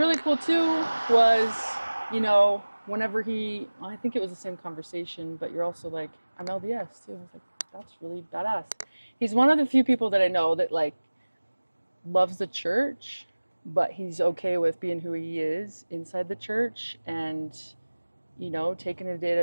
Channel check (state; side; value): inverted; both; correlation -1.00